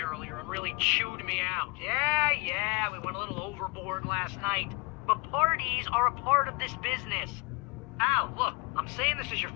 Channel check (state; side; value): quieter; right; 28.4 dB